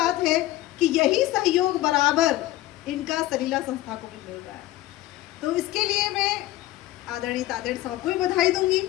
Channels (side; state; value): right; quieter; 16.0 dB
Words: है कि यही सहयोग बराबर इनका सलीला संस्था को भी मिल रहा है। तो इसके लिए मैं आदरणीय तातेड़ साहब को भी बधाई दूंगी।